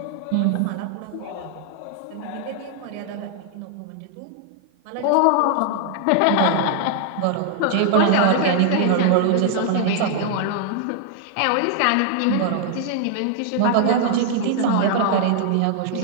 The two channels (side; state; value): both; different; correlation 0.00